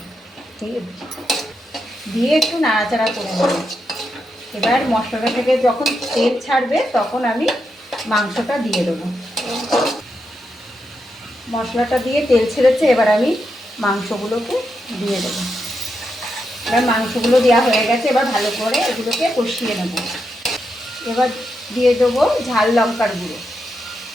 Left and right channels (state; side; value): normal; both; correlation 0.84